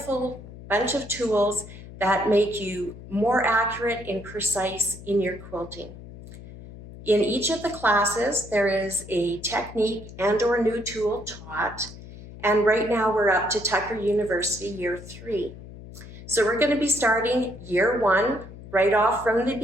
bunch of tools that make you more accurate and precise in your quilting. In each of the classes, there is a technique and/or new tool taught, And right now we're up to Tucker University Year 3. So we're going to be starting Year 1 right off from the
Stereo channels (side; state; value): left; noise; hum, 15 dB below the sound